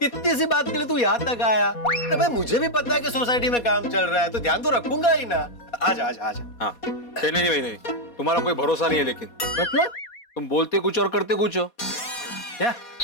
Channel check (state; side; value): late; right; 4.2 ms